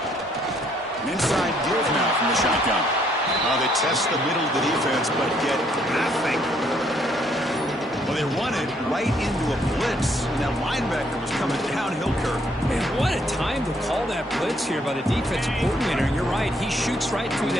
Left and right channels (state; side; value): normal; both; correlation 0.68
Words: An inside give now from the shotgun. They test the middle of the defense, but get nothing. Well, they run it right into a blitz, and that linebacker was coming downhill curve. Man, what a time to call that blitz here by the defensive coordinator. And you're right, he shoots right through